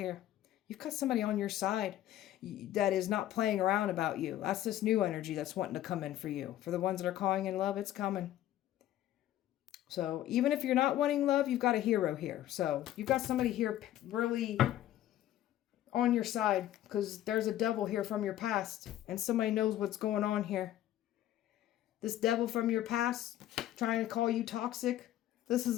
You've got somebody on your side that is not playing around about you. That's this new energy that's wanting to come in for you. For the ones that are calling in love, it's coming. So even if you're not wanting love, you've got a hero here. So you've got somebody here really on your side because there's a devil here from your past and somebody knows what's going on here. This devil from your past trying to call you toxic. This is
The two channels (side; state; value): right; quieter; 13.0 dB